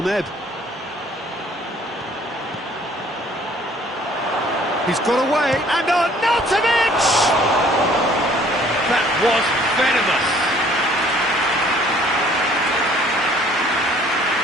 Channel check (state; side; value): normal; both; correlation 0.57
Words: ebb. He's got away, and Arnautovic! That was venomous.